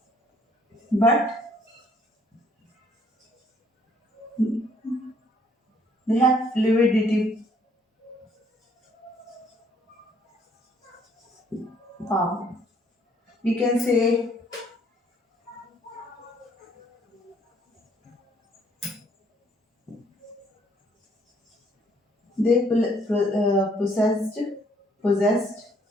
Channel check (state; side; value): normal; both; correlation 0.65